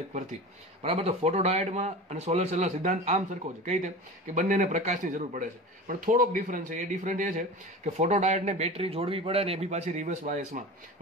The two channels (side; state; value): both; normal; correlation 0.32